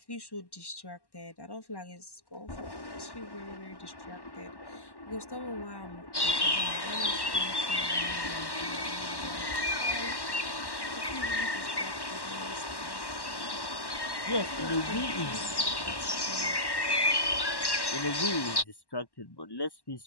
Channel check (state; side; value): late; right; 1.1 ms